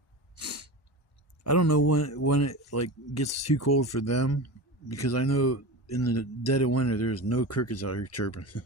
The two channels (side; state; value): both; normal; correlation 0.27